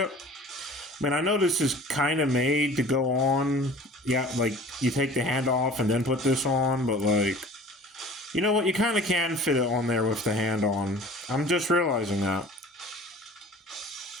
I mean, I know this is kind of made to go on. Yeah, like, you take the hand off and then put this on, but, like, you know what? You kind of can fit it on there with the hand on. I'm just realizing that.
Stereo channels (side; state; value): both; normal; correlation 0.45